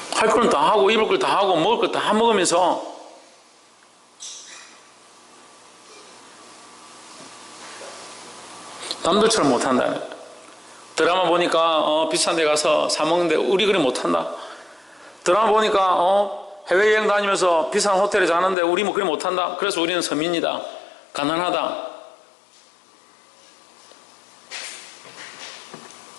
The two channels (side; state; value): right; drops out; at 18.6 s